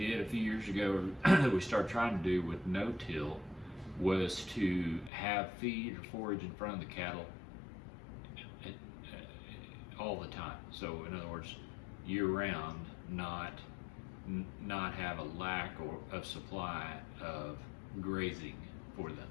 a few years ago that we started trying to do with no-till was to have feed or forage in front of the cattle all the time. So in other words, year-round, not have a lack of supply of grazing for them.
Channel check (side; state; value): right; drops out; at 5.1 s